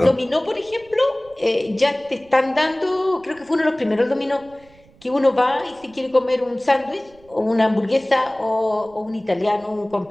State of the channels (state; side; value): noise; right; rumble, 28 dB below the sound